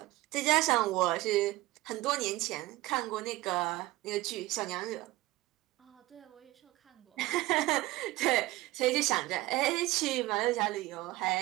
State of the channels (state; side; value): quieter; left; 18.4 dB